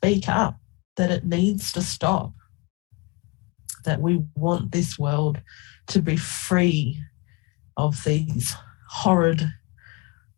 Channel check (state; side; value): quieter; right; 26.2 dB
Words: up that it needs to stop, that we want this world to be free of these horrid